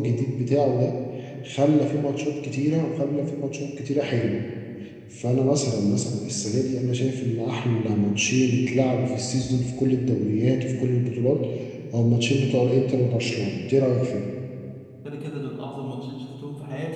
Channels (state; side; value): identical; both; correlation 1.00